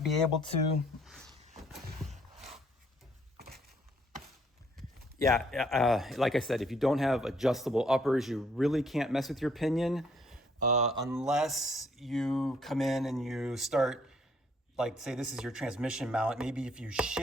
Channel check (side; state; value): both; normal; correlation 0.66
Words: be able to. Yeah, like I said, if you don't have adjustable uppers, you really can't mess with your pinion. unless you come in and you start, like say this is your transmission mount, maybe if you